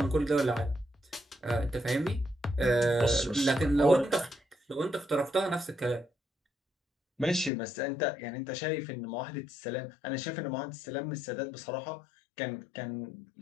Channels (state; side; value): drops out; right; at 7.5 s